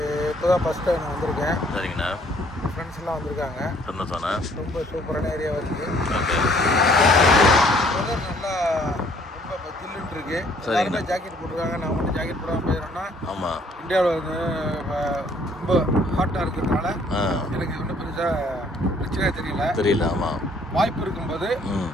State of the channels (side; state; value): both; normal; correlation 0.61